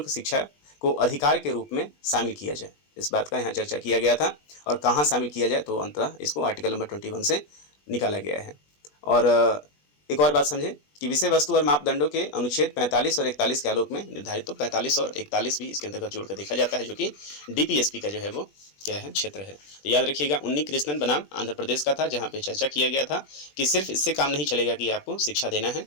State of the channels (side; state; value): right; late; 20 ms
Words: शिक्षा को अधिकार के रूप में शामिल किया जाए। इस बात का यहाँ चर्चा किया गया था और कहाँ शामिल किया जाए, तो अंततः इसको आर्टिकल नंबर 21 से निकाला गया है। और एक और बात समझें कि विषय वस्तु और मापदंडों के अनुच्छेद 45 और 41 के आलोक में निर्धारित, तो 45 और 41 भी इसके अंतर्गत जोड़कर देखा जाता है, जो कि डीपीएसपी का जो है वो क्या है, क्षेत्र है। तो याद रखिएगा उन्नी कृष्णन बनाम आंध्र प्रदेश का था, जहां पे चर्चा किया गया था कि सिर्फ इससे काम नहीं चलेगा कि आपको शिक्षा देना है,